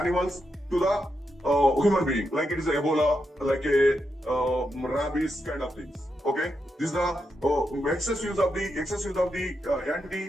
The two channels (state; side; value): normal; both; correlation 0.84